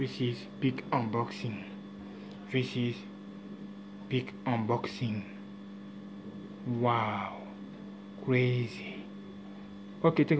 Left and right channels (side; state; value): both; identical; correlation 1.00